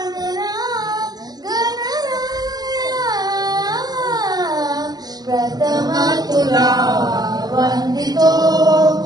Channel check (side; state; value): left; late; 0.19 ms